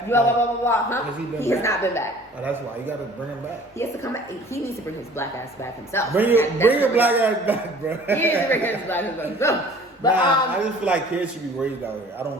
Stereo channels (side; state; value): both; normal; correlation 0.49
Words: blah blah blah blah. Huh? He has not been back. Oh, that's why you gotta bring him back. He has to come back. He needs to bring his black ass back himself. Bring your black ass back, bro. He needs to bring his black ass back himself. But I just feel like kids should be raised out here. I